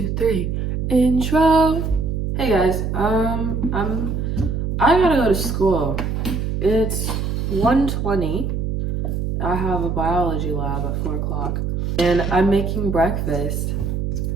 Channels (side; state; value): right; noise; hum, 1 dB below the sound